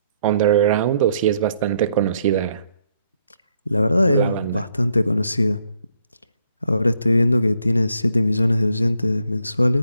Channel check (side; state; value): both; inverted; correlation -0.71